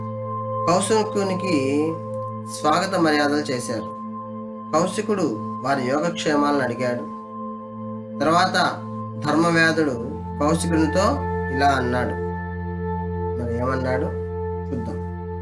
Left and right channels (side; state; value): both; identical; correlation 1.00